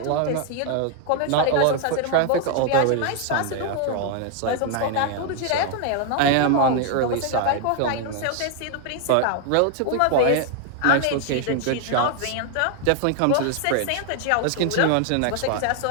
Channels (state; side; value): different; both; correlation 0.00